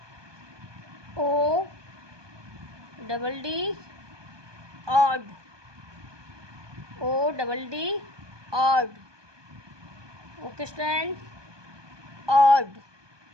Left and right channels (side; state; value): left; late; 1.2 ms